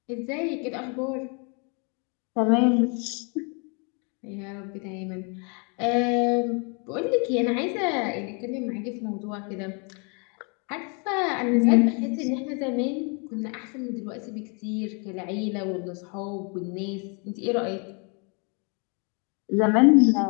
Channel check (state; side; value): quieter; right; 35.3 dB